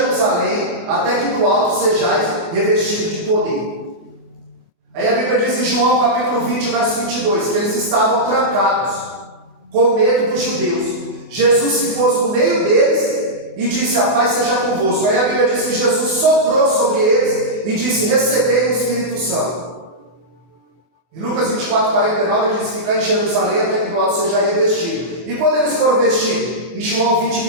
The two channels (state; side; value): late; left; 24 ms